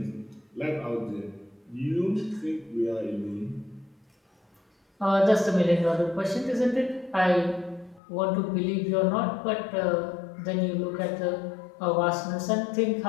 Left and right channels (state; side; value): drops out; right; at 8.0 s